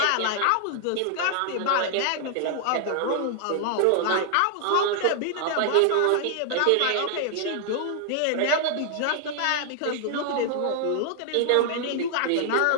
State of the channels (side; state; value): both; different; correlation 0.00